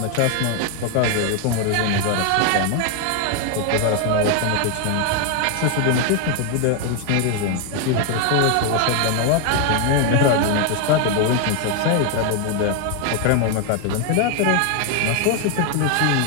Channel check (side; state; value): both; different; correlation 0.01